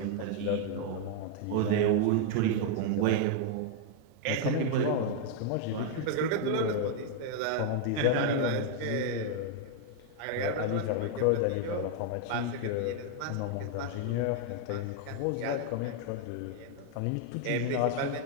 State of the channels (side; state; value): both; different; correlation 0.00